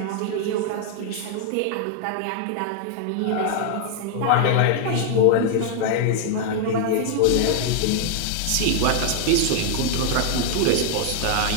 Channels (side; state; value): both; different; correlation 0.00